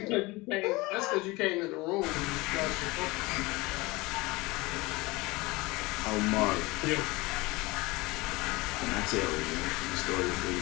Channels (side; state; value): right; quieter; 22.7 dB